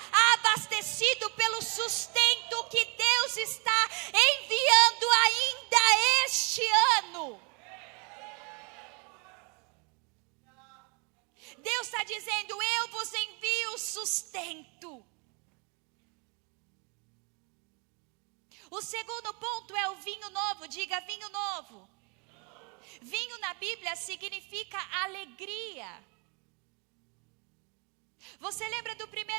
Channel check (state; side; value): quieter; left; 33.4 dB